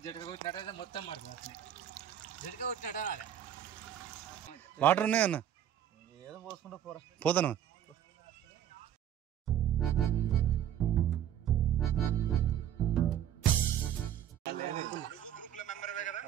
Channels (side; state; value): left; quieter; 10.5 dB